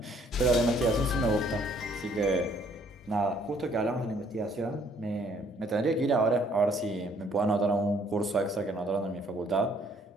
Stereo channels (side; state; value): both; normal; correlation 0.63